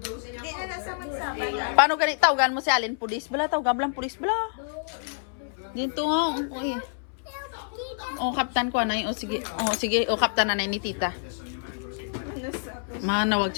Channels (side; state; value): right; silent; 60 dB below the other